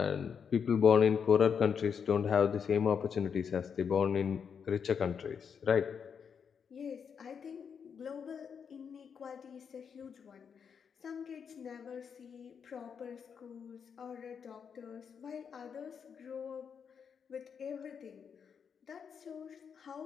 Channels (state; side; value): quieter; right; 6.9 dB